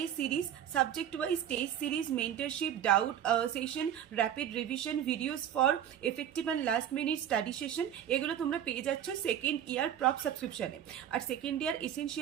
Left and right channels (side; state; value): left; quieter; 10.0 dB